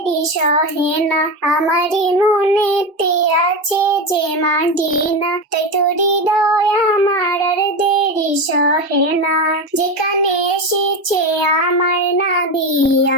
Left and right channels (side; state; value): both; normal; correlation 0.18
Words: সহে না। আমারই মনেতে আছে যে মাদিনা, তাই তোর হৃদয় আমার আর দেরি সহে না। যেখানে এসেছে আমার নবী,